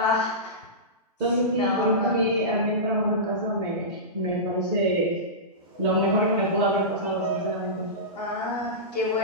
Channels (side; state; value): both; normal; correlation -0.18